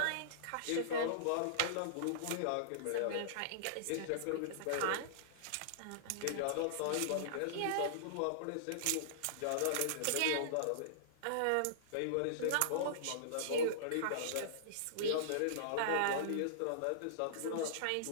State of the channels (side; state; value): both; different; correlation -0.02